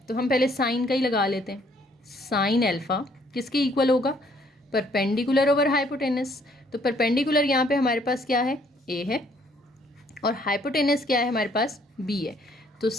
तो हम पहले साइन का ही लगा लेते हैं। साइन अल्फ़ा किसके इक्वल होगा, परपेंडिकुलर ओवर हाइपोटेनस। तो परपेंडिकुलर यहाँ पे हमारे पास क्या है, ए है, और हाइपोटेनस क्या है हमारे पास, बी है। तो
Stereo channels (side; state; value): both; normal; correlation 0.64